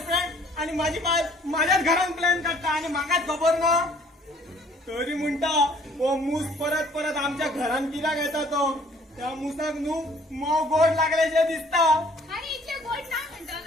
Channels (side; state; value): both; normal; correlation 0.58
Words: फ्रेंड आणि माझी बाय माझ्याच घरान प्लॅन काडटा आणि म्हाकाच खबर ना तरी म्हणटा हो मूस परत परत आमच्या घरान कित्याक येता तो त्या मुसाक न्हू मोव गोड लागल्याचे दिसता आनी इतले गोड ना